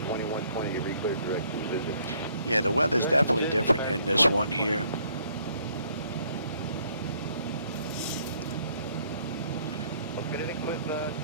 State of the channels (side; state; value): both; inverted; correlation -0.64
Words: 2120, you re-cleared direction, busy. Yeah, the weather's definitely different in this one here. With